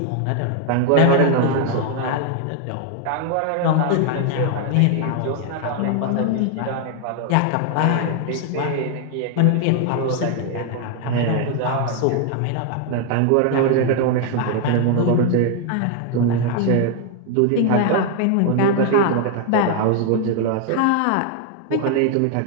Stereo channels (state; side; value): different; both; correlation 0.01